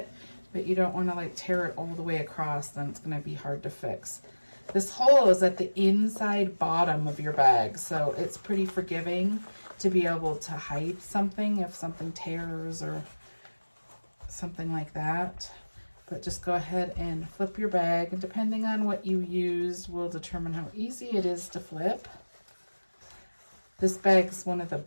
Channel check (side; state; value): both; inverted; correlation -1.00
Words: but you don't want to like tear it all the way across, then it's going to be hard to fix. This hole is at the inside bottom of your bag, so it's pretty forgiving to be able to hide something if something tears or something like that. But just go ahead and flip your bag, and depending on what you used will determine how easy it is to flip. This bag's one of the